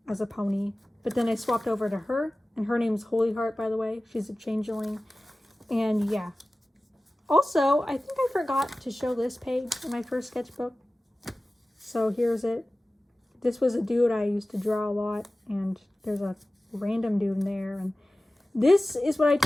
as a pony. But then I swapped over to her. And her name's Holy Heart, by the way. She's a changeling. And yeah. Also, I think I forgot to show this page in my first sketchbook. So here's it. This was a dude I used to draw a lot. And there's a random dude in there. And this is what I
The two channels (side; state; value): both; normal; correlation 0.96